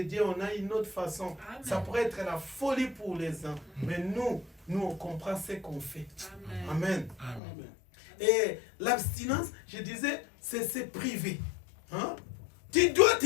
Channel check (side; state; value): right; drops out; at 7.4 s